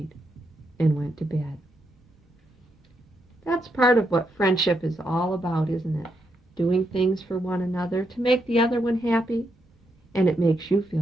and went to bed. That's part of what friendship is all about, isn't it? Doing things for one another to make the other one happy, and it makes you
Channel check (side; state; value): both; normal; correlation 0.80